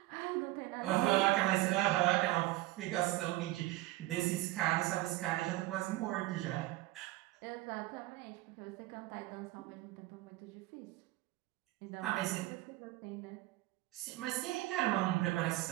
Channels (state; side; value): quieter; left; 18.5 dB